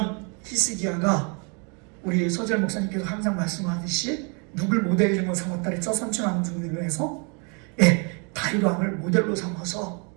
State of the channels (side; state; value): left; quieter; 34.9 dB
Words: 히스기야가 우리 서재 목사님께서 항상 말씀하듯이 누굴 모델로 삼았다 그랬죠? 선천왕중으로 해서 다윗 왕을 모델로 삼아서